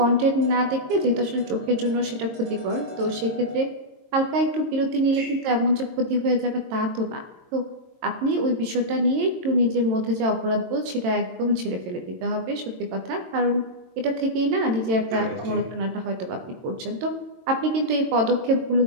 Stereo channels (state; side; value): late; left; 22 ms